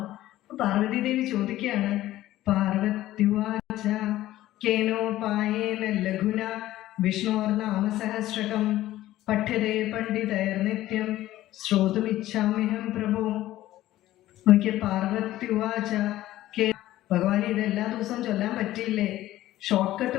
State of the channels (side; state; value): right; quieter; 14.9 dB